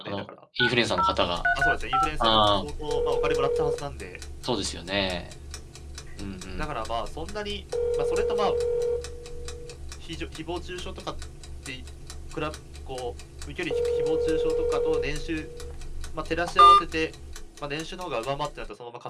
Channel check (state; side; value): identical; both; correlation 1.00